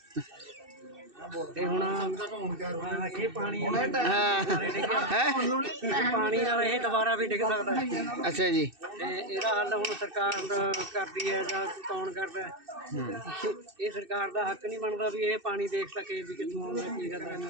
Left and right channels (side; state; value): left; late; 2.6 ms